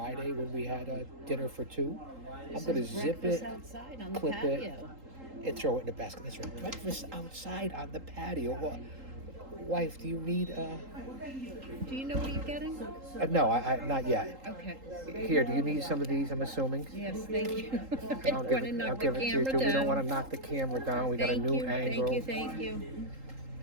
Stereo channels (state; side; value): late; left; 3.8 ms